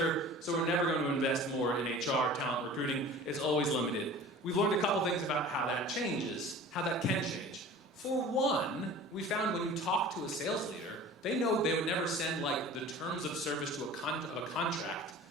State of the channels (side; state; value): both; normal; correlation 0.41